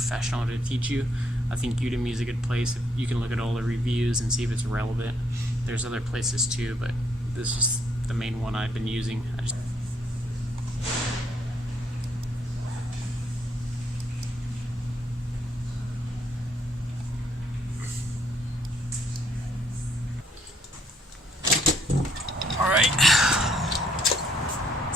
to teach you, I think Udemy is a good place. You can look at all the reviews and see if it's relevant. There's other places too, but this is the main one I've been using. All right.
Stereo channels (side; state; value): both; normal; correlation 0.70